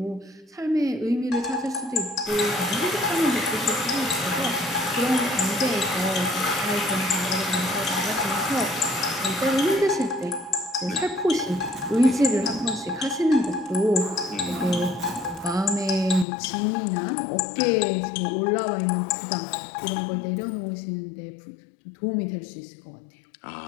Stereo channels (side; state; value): right; drops out; at 16.2 s